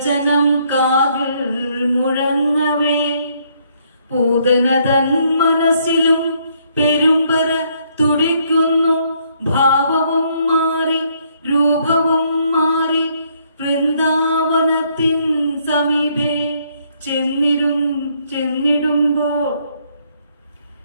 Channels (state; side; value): inverted; both; correlation -0.69